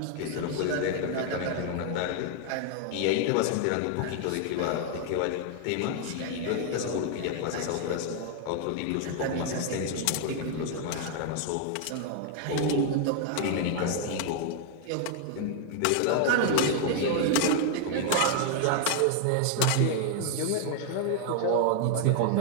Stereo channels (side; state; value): both; different; correlation 0.00